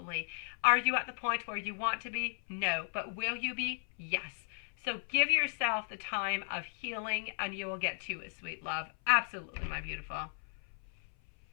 Are you at the point where you want to be? No. But will you be? Yes. So give yourself the time of healing and you will get to it, sweet love. Absolutely, my beautiful.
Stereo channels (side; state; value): right; silent; 54 dB below the other